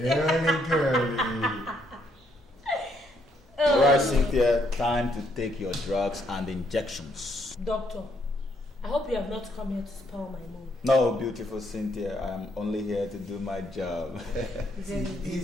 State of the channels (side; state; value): both; normal; correlation 0.72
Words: girly. Alright, Cynthia, time to take your drugs and injections. Doctor, I hope you have not come here to spoil my mood. No, beautiful Cynthia, I'm only here to do my job.